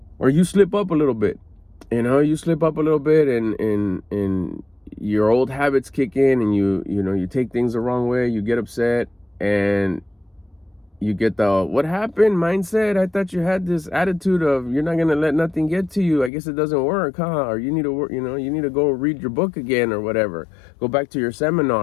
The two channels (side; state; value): right; drops out; at 16.3 s